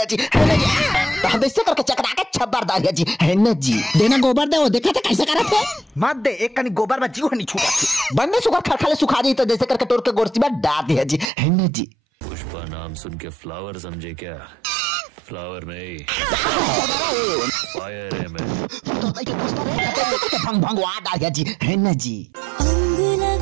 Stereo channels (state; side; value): drops out; left; at 11.3 s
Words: जी है ना जी। ऐसे करके चकरा के छब्बर दाया जी है ना जी। देना गोबर दे, वो देखा था कैसे करा थे मत दे, एक कनी गोबर में जीव नहीं छूटा बंदे शुगर खरखले सुखा दी तो जैसे करके तोड़ के गोरसी में डाल दिया जी है ना जी। पुष्पा नाम सुन के फ्लावर समझे क्या? फ्लावर नहीं फायर है मैं। भंग भंग वाट आ गया जी है ना जी। अंग